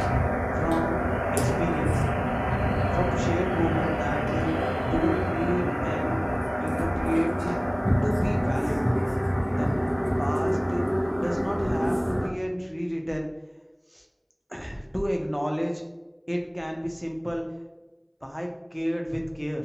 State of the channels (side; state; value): both; identical; correlation 1.00